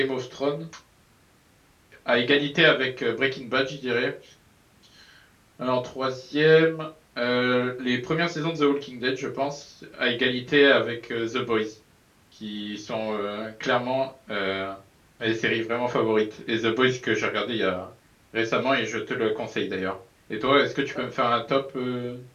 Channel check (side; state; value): both; identical; correlation 1.00